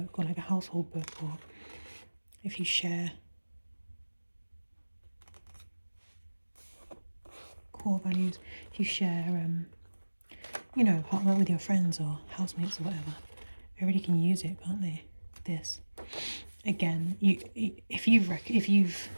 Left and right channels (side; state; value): both; inverted; correlation -1.00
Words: or like a household book, or if you share core values, if you share you know, apartment with your friends or housemates or whatever, everybody can use it, can't they? This, again, if you've